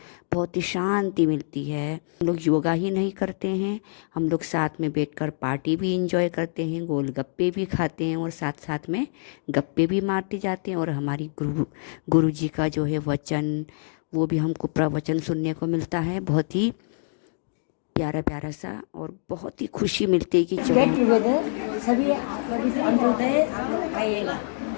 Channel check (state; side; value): silent; right; digital silence